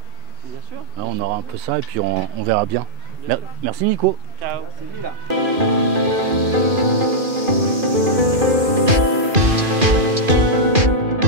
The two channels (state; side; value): late; left; 2.4 ms